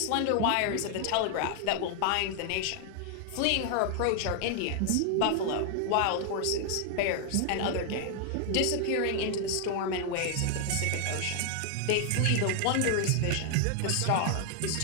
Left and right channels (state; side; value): different; both; correlation 0.00